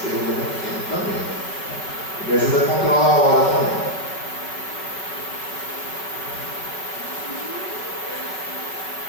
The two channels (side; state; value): right; late; 5.5 ms